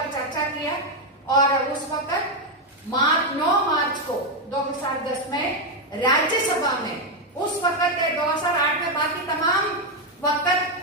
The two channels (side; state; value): both; normal; correlation 0.04